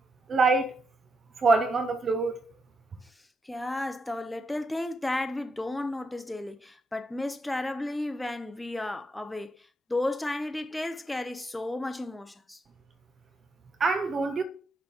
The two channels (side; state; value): both; normal; correlation 0.81